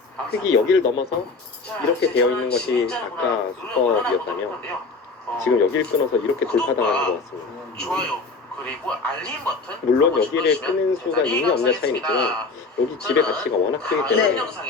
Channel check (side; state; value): right; quieter; 4.0 dB